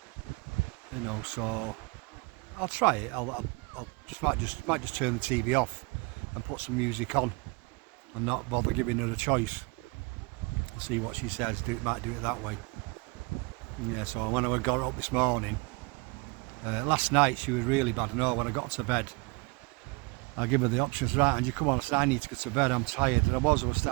you know, so I'll try it. I'll might just turn the TV off and put some music on and not bother giving her a choice. See what she says, might do it that way. Yeah, so when I got up this morning, last night she was really bad. No, when I got to bed, I give her the options, right, and you come on, I said, I need to go to bed, I'm tired. And I was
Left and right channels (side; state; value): left; quieter; 27.4 dB